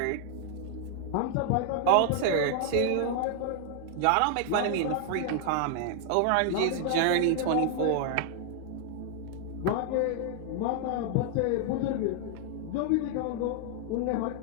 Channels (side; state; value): both; different; correlation 0.00